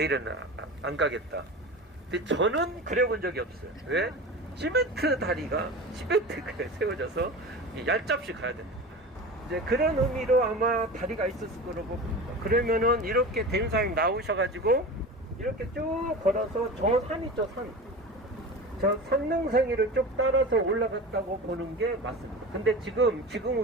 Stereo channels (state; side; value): normal; both; correlation 0.31